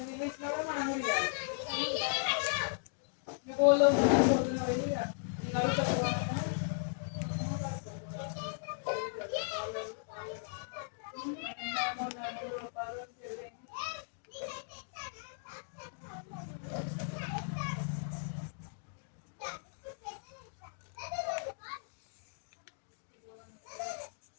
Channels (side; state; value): right; silent; digital silence